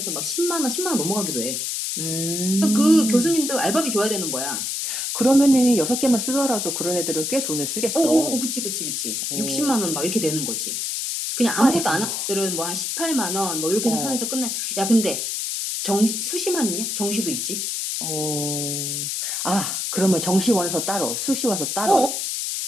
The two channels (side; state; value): left; noise; hiss, 2 dB below the sound